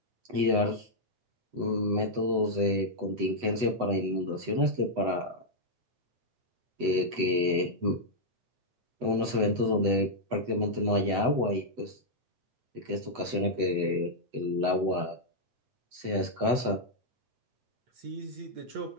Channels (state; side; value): late; left; 8.0 ms